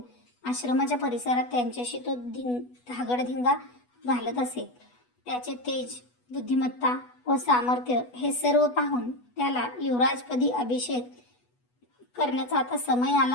आश्रमाच्या परिसरात त्यांच्याशी तो धागडधिंगा घालत असे. त्याचे तेज, बुद्धिमत्ता व सामर्थ्य हे सर्व पाहून त्याला युवराजपदी अभिषेक करण्याचा आता समय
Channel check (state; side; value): late; right; 8.2 ms